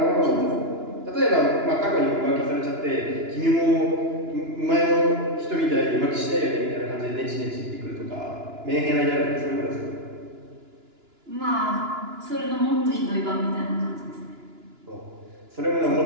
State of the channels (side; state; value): left; late; 2.9 ms